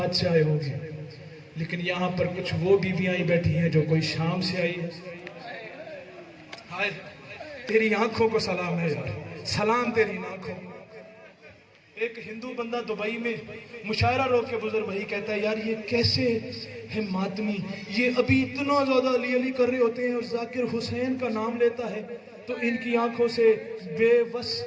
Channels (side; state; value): both; identical; correlation 1.00